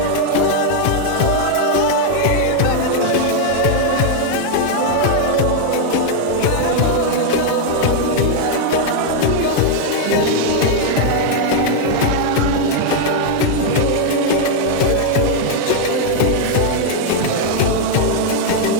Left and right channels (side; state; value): both; different; correlation 0.00